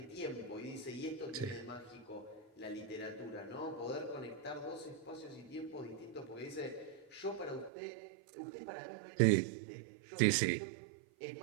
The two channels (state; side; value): drops out; left; at 7.7 s